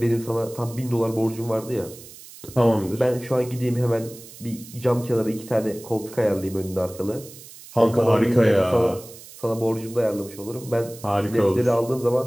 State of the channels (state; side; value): noise; right; hiss, 18 dB below the sound